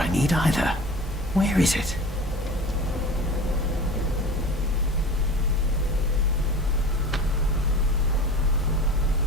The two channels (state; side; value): normal; both; correlation 0.36